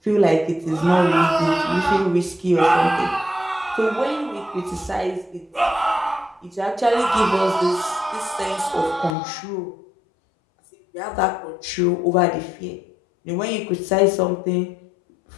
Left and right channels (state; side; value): drops out; right; at 9.2 s